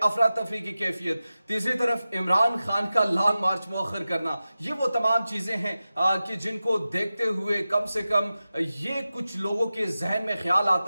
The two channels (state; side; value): inverted; both; correlation -0.94